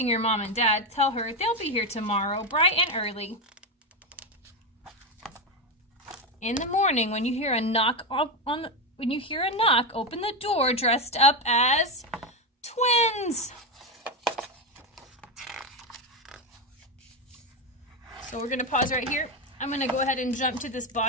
your mom and dad, tell her they'll be here tomorrow, bright and early. In the morning, when you hear a knock, open the door dressed up as twins. So we're going to pause right here. I'm going to go ahead and jump to this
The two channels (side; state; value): both; normal; correlation 0.11